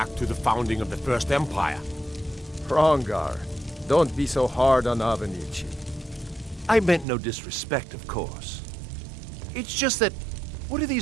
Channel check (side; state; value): left; drops out; at 7.1 s